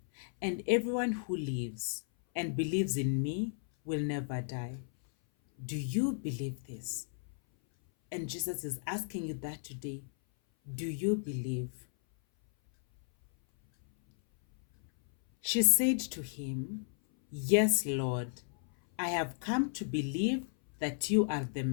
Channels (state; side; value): silent; right; 55 dB below the other